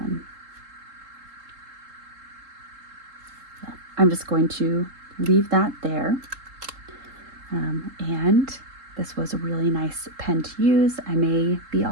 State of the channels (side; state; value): left; late; 3.7 ms